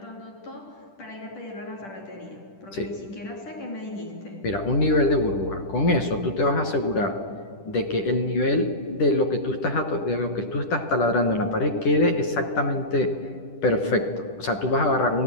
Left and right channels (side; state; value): right; late; 10 ms